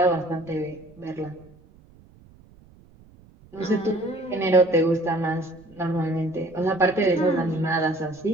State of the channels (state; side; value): noise; right; rumble, 26 dB below the sound